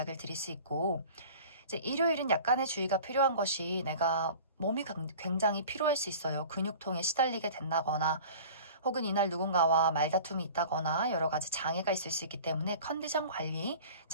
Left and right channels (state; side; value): inverted; both; correlation -0.42